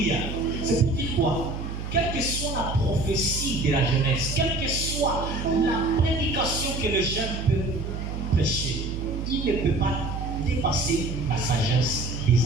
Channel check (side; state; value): right; noise; hum, 5 dB below the sound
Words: C'est pour dire quoi? Quelle que soit la prophétie de la jeunesse, quelle que soit la prédication que le jeune peut prêcher, il ne peut pas dépasser la sagesse